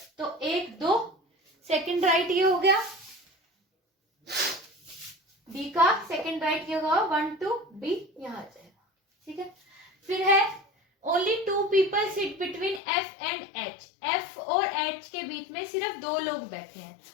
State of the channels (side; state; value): right; drops out; at 12.8 s